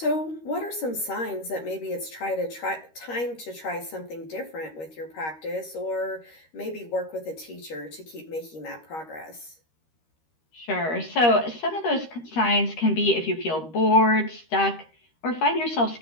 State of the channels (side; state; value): right; late; 13 ms